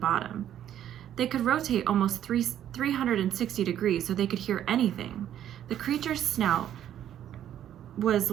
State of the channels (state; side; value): quieter; left; 10.8 dB